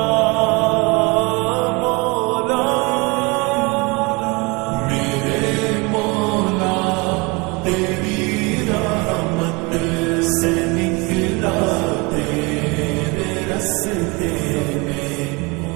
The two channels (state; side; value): quieter; left; 27.3 dB